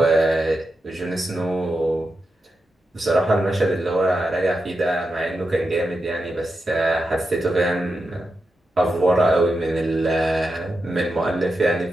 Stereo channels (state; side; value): normal; both; correlation 0.88